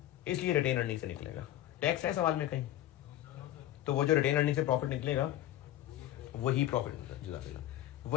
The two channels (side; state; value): right; quieter; 13.4 dB